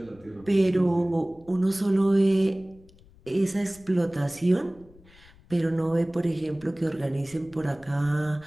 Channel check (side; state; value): left; noise; rumble, 25 dB below the sound